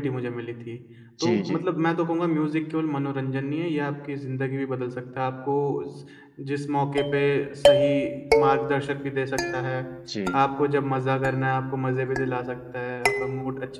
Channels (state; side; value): identical; both; correlation 1.00